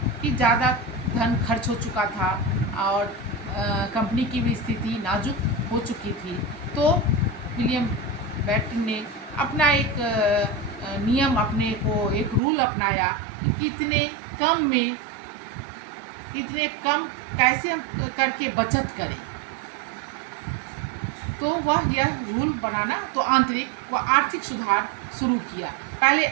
कि ज़्यादा धन खर्च हो चुका था और कंपनी की भी स्थिति नाजुक हो चुकी थी। तो विलियम बेटिंग ने अपना एक नियम, अपने को एक रूल अपनाया कि कितने कम कैसे करके बचत करें। तो वह यह रूल बनाना, तो आंतरिक व आर्थिक सुधार शुरू किया। पहले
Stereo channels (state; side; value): drops out; left; at 12.4 s